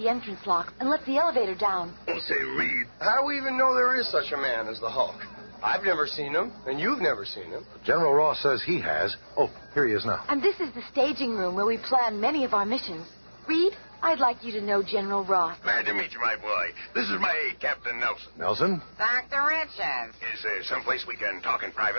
entrance locks and let the elevator down. Don't say Reed. How do we even know there is such a man as the Hulk? I've never seen him, and you've never seen him. General Ross says he has. Oh, here he is now. And this is the staging room where we plan many of our missions. Reed, I'd like you to know General Ross. Glad to meet you, my boy. This is my aide, Captain Nelson. Nelson? Dr. Richards. Is there someplace we can talk in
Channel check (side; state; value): both; inverted; correlation -1.00